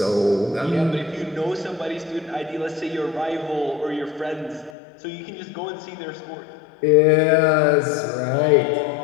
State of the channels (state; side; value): drops out; right; at 4.7 s